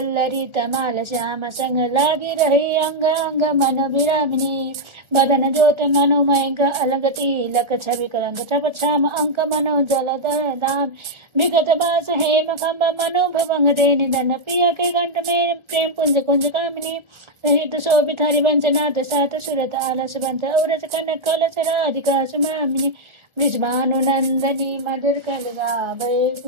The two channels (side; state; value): left; late; 1.3 ms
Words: तमाल श्याम संग लागी रही अंग अंग मन विरामिनी बदन ज्योत मनोमय अलग तिलक छवि कलंक छप छाम अंक मनो जल दाम विगत बास हेम खम्ब मनो भवंग दे निधन पिया के घंट में प्रेम पुंज कुंज कामिनी रहित शोभित हरिवंश नाथ सात सुरत आलस बंत औरस कनक कलश राधिका सुमामिनी ब्रिजभानुनंदनी मधुर